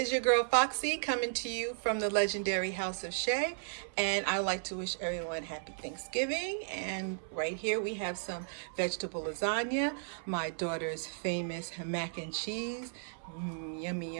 your girl Foxy coming to you from the legendary House of Shay, and I would like to wish everyone happy Thanksgiving. And right here we have some vegetable lasagna, my daughter's famous mac and cheese. Yummy,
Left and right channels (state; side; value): silent; left; 55 dB below the other